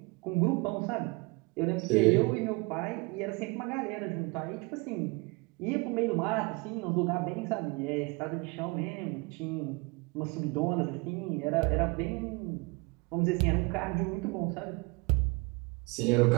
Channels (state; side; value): quieter; left; 27.8 dB